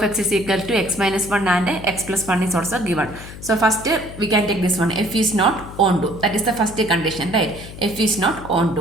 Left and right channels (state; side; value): noise; left; hum, 14 dB below the sound